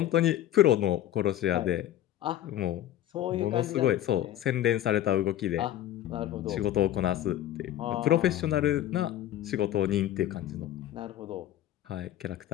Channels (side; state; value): right; quieter; 12.6 dB